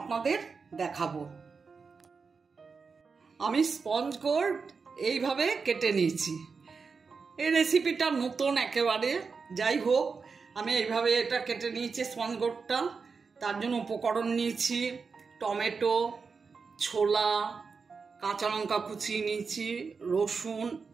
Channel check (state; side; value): quieter; left; 5.0 dB